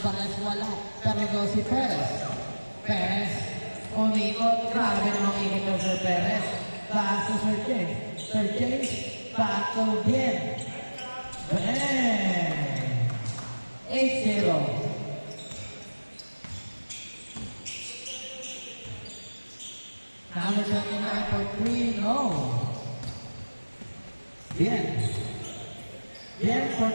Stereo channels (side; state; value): both; inverted; correlation -1.00